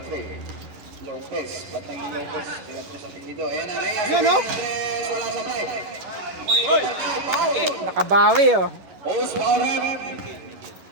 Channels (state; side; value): late; left; 11 ms